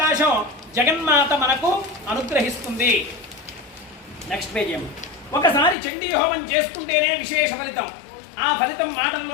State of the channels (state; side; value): drops out; right; at 5.8 s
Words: జగన్మాత మనకు అనుగ్రహిస్తుంది. Next page. ఒకసారి చండీ హోమం చేసుకుంటేనే విశేష ఫలితం. ఆ ఫలితం